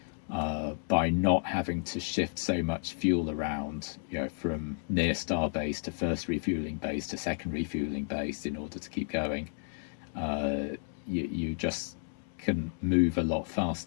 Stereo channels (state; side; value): silent; right; digital silence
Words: By not having to shift so much fuel around, from near Starbase to first refueling base to second refueling base in order to keep going, you just can move a lot